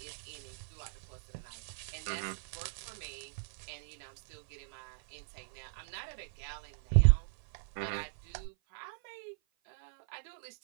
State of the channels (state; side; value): silent; left; 53 dB below the other